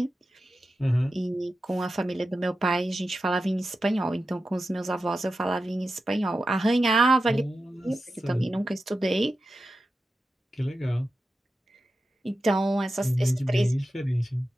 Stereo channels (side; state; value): both; normal; correlation 0.92